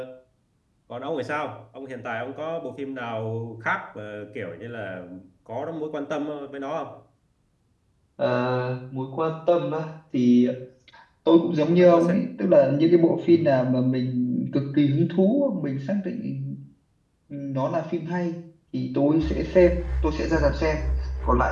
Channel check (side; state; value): both; identical; correlation 1.00